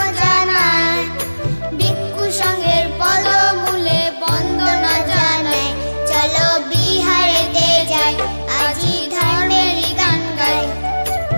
জানাই, ভিক্ষু সঙ্গের পদমূলে বন্দনা জানাই। চলো বিহারেতে যাই, আজি ধর্মেরই গান গাই।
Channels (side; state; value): both; inverted; correlation -1.00